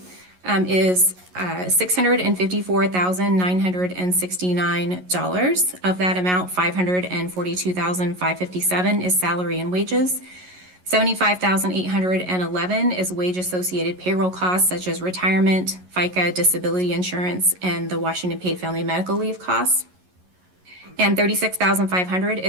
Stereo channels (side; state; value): left; late; 11 ms